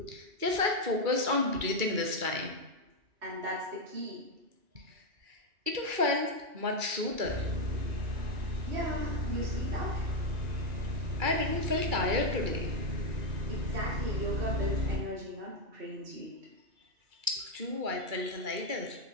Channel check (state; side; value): late; left; 2.3 ms